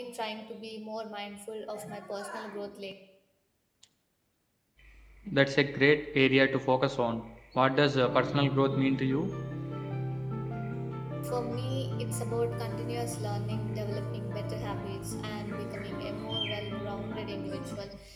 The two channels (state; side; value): identical; both; correlation 1.00